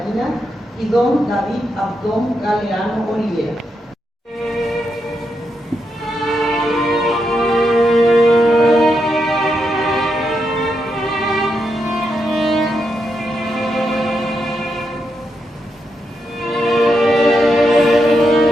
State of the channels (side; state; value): both; normal; correlation 0.83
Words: y don David Abdón Galeano Olivera.